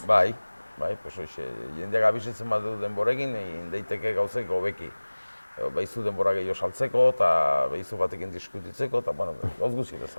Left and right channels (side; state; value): both; inverted; correlation -1.00